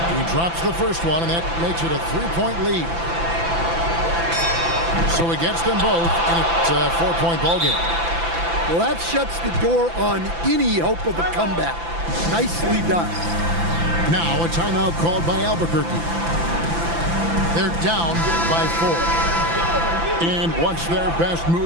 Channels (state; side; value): late; left; 5.9 ms